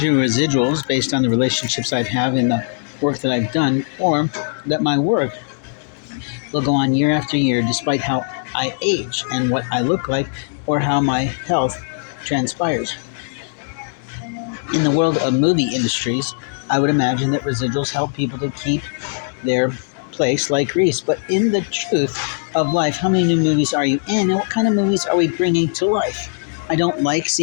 residuals based on the relationships I have in the work that I've done, or that my work will go on year after year despite how I age and what I look like or how my health transpires. In the world of movie industries, I would imagine that residuals help people to keep their place like Greece. But in the truth of life, how many new movies are you in, and what kind of movies are we bringing to life? I don't like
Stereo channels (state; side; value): silent; right; digital silence